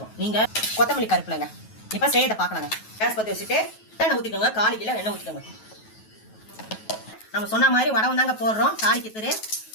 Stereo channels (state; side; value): late; right; 9.3 ms